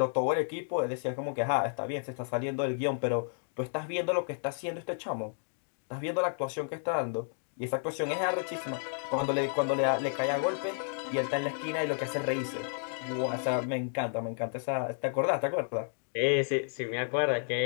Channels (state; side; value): silent; right; digital silence